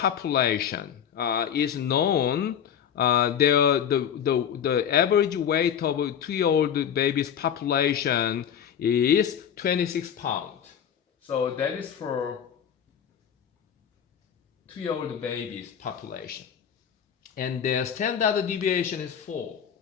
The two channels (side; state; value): right; quieter; 8.6 dB